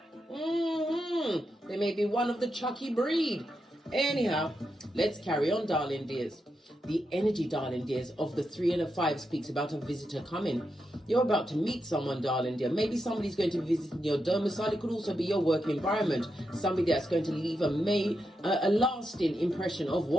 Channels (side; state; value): both; normal; correlation 0.86